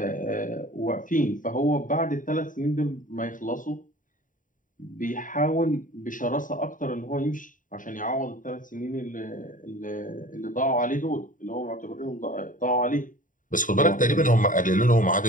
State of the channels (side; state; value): right; late; 0.38 ms